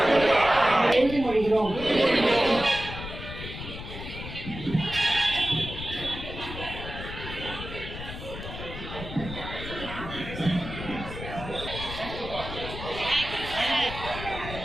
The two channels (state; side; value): noise; left; rumble, 9 dB below the sound